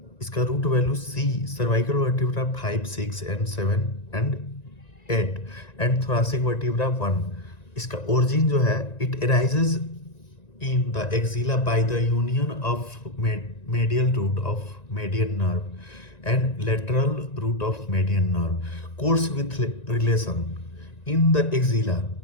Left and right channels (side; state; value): right; late; 1.9 ms